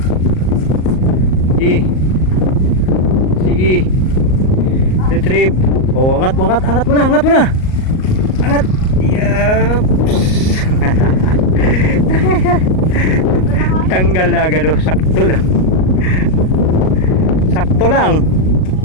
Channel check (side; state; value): right; late; 38 ms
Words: Sige. Retrieve. Oh, angat mo na. Angat. Yaps. Tanggal na agad, oh. Sakto lang.